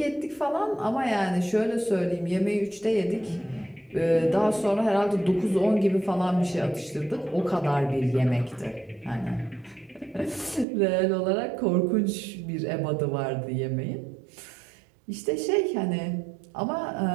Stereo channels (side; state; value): left; drops out; at 10.7 s